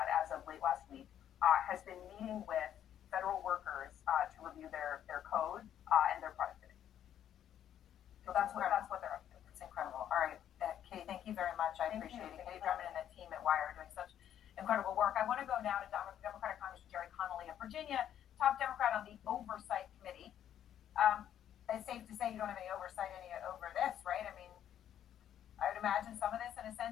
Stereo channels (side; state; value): right; quieter; 10.3 dB